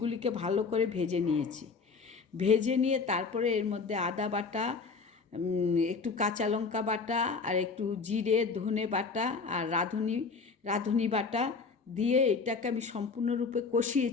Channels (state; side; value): quieter; right; 4.8 dB